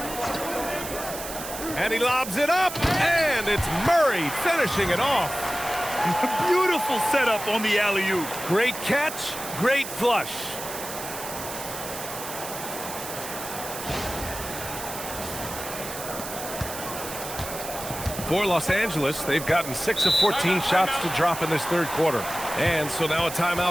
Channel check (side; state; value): right; noise; hiss, 9 dB below the sound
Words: And he lobs it up, and it's Murray finishing it off. Beautiful setup on the alley-oop. Great catch, great flush. For Los Angeles, they've gotten 6 of 14 shots to drop in this third quarter. And so now a